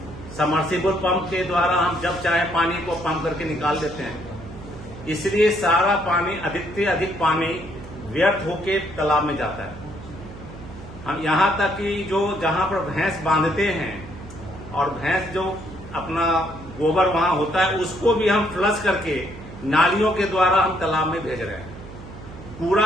सबमर्सिबल पंप के द्वारा हम जब चाहे पानी को पंप करके निकाल देते हैं, इसलिए सारा पानी, अधिक से अधिक पानी व्यर्थ होके तालाब में जाता है। हम यहाँ तक कि जो जहां पर भैंस बांधते हैं और भैंस जो अपना गोबर वहां होता है, उसको भी हम फ्लश करके नालियों के द्वारा हम तालाब में भेज रहे हैं।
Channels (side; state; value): right; noise; hum, 15 dB below the sound